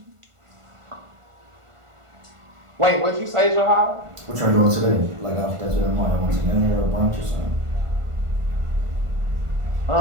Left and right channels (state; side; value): late; left; 1.5 ms